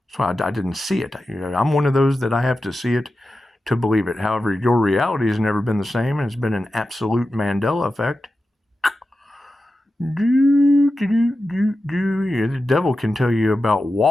So I didn't see it. I'm one of those that I have to see it to believe it. However, your reality has never been the same, and it's been an absolute Mandela effect. Yeah, the devil can tell you about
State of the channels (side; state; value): both; normal; correlation 0.92